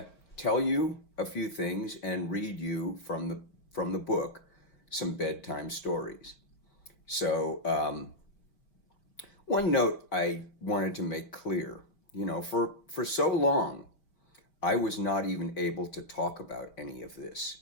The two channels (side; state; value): right; late; 4.8 ms